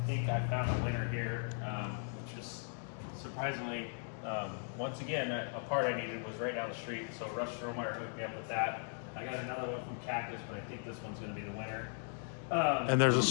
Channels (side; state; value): right; silent; 52 dB below the other